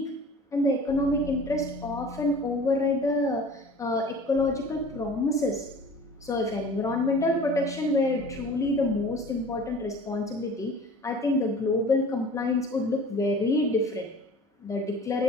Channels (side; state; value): both; normal; correlation 0.44